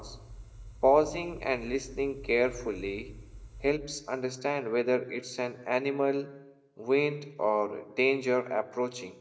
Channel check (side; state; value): both; identical; correlation 1.00